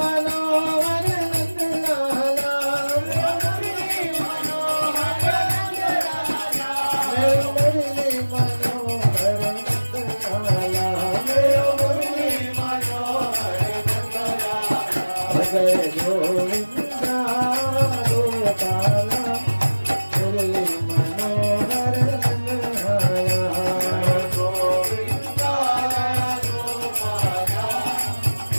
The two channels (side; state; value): both; inverted; correlation -1.00